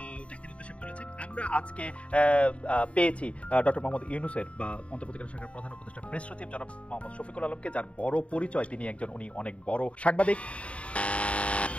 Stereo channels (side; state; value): right; late; 0.063 ms